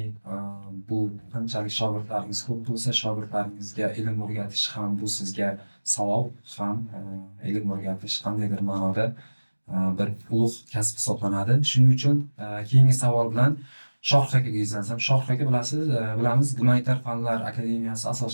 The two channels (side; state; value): both; inverted; correlation -1.00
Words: bu qanchalik shogirdlaringiz ko'p bo'lsa, shogirdlaringizga ilm o'rgatish ham bu sizga savob, ham ilm o'rgatish qandaydir ma'noda bir ulug' kasb hisoblanadi. Shuning uchun keyingi savol bilan Shohruh akaga yuzlansam. Shohruh aka bilamiz, Gumanitar fanlar akademiyasi